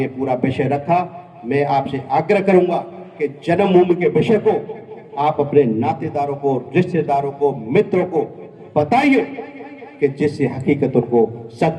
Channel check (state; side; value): identical; both; correlation 1.00